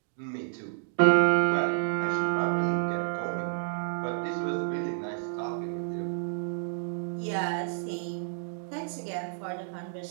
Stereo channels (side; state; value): left; silent; digital silence